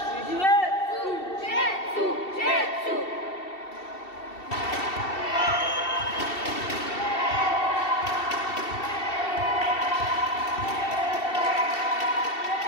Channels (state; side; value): late; right; 2.7 ms